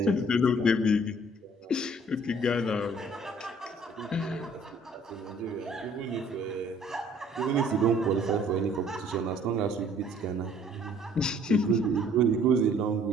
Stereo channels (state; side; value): normal; both; correlation 0.58